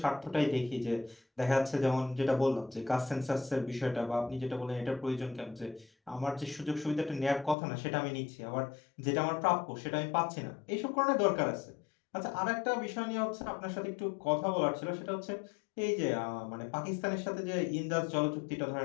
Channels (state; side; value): drops out; right; at 7.6 s